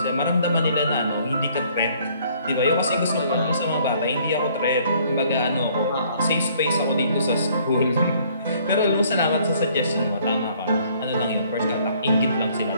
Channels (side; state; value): both; inverted; correlation -0.61